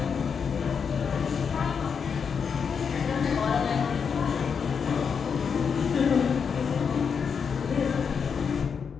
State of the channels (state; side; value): quieter; right; 6.4 dB